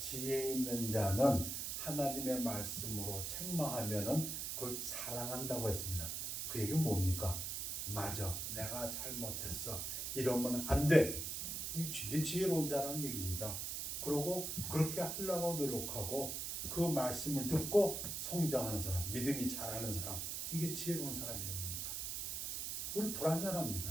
있는 자는 하나님의 말씀으로 책망하면은 그걸 사랑한다고 했습니다. 그 얘기는 뭡니까? 맞아, 내가 잘못했어. 이러면 안 돼. 이게 지혜로운 자라는 얘기입니다. 그러고 그렇게 하려고 노력하고 그 말씀을 듣고 성장하는 사람, 믿음이 자라는 사람, 이게 지혜로운 사람입니다. 우리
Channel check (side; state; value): right; noise; hiss, 3 dB below the sound